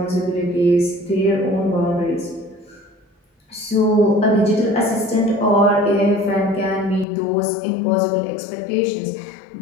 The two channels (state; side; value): drops out; right; at 7.1 s